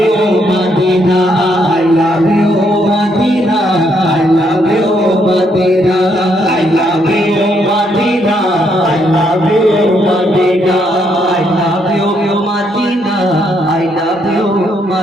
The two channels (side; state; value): both; normal; correlation 0.74